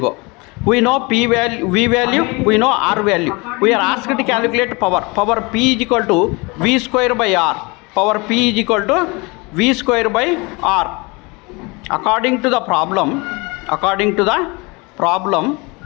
We know P value, V value, we know R value. We are asked to calculate power. Power P is equal to V square by R. According to the problem,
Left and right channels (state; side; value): quieter; right; 27.0 dB